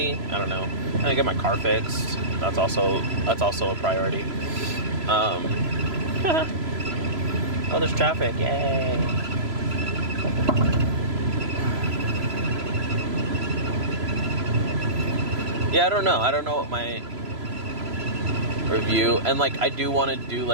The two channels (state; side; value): late; left; 3.0 ms